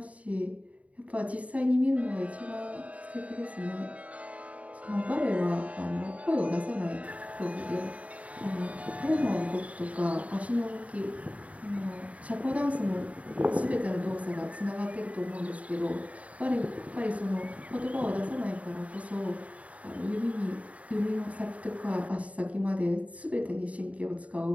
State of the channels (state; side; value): late; left; 0.067 ms